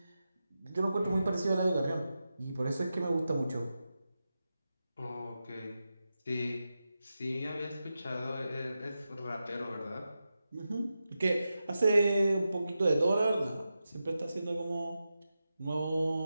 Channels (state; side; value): inverted; both; correlation -0.91